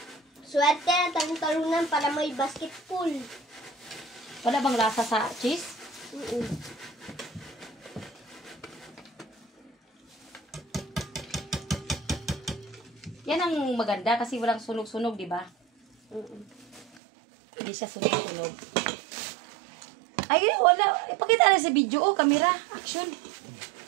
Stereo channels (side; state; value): left; drops out; at 17.0 s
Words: Swerte na talunan para may basketball. Wala bang lasa sa cheese? Yan ang maganda kasi walang sunog-sunog, di ba? Hindi siya sunog-sunog. Ay, wala. Ipakita na sa video. Oh, camera. Action.